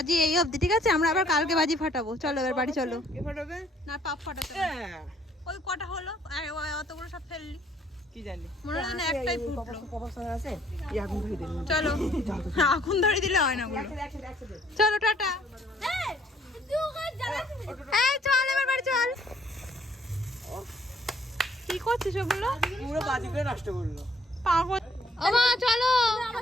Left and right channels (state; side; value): normal; both; correlation 0.63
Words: এই অবধি, ঠিক আছে? আমরা আবার কালকে বাজি ফাটাবো। চলো এবার বাড়ি চলো। কে ফাটাবে? না পাপ ফাটাতে হবে। হ্যাঁ, ওই কটা হলো, আর ওই অতগুলো সব ফেললি, কি জানি। মনে হয় না একটাই ফুটলো। কপাল আছে, এই আগুন ধরে দিন। চলো, আগুন ধরে দিলে হয় না গুলো। একসাথে। চলো টাটা। এই চল এবার বাড়ি চল। কি করছিস ওগুলো? পুরো বাজিগুলো নষ্ট করলো। পাগল। ও মা চলো,